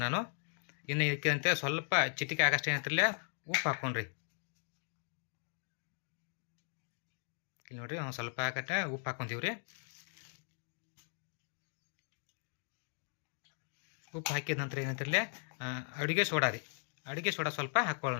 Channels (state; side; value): silent; right; 53 dB below the other